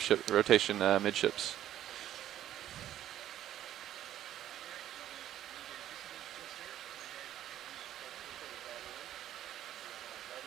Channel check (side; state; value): left; quieter; 12.0 dB